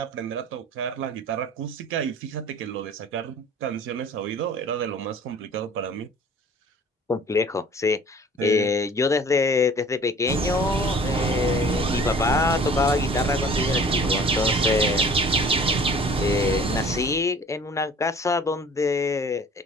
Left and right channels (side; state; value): both; normal; correlation 0.48